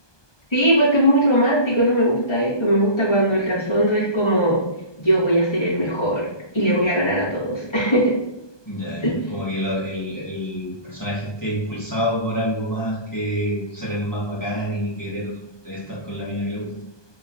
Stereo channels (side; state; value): right; late; 1.2 ms